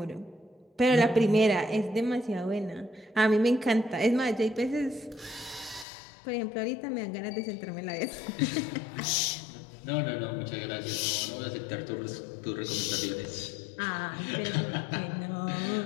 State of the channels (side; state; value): right; drops out; at 5.9 s